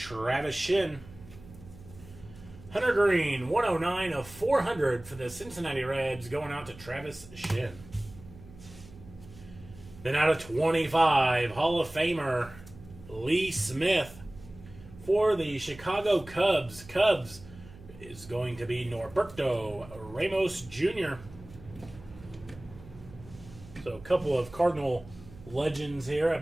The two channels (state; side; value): noise; right; hum, 19 dB below the sound